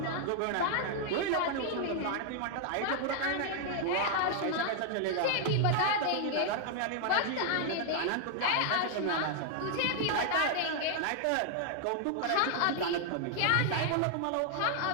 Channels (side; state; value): both; different; correlation 0.00